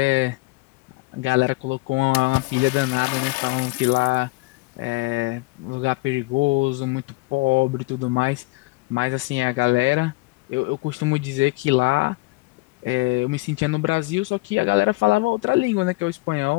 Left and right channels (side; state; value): right; quieter; 23.7 dB